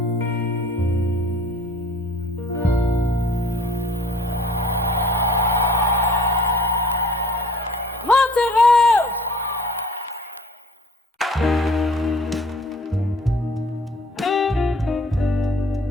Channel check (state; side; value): normal; both; correlation 0.52